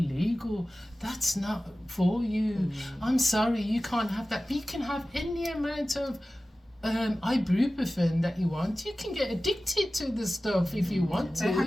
That's not for you. I'm sorry, you can't have that. You can have any amount of ibuprofen that you want. You can get addicted to the stuff if you want to. They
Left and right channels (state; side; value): normal; both; correlation 0.96